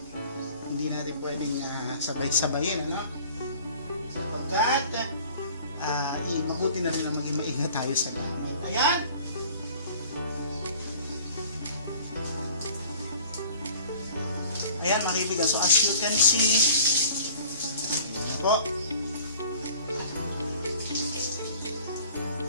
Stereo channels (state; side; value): inverted; both; correlation -0.48